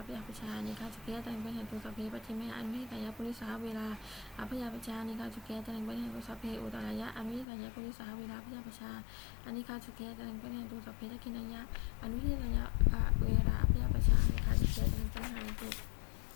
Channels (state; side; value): drops out; right; at 7.5 s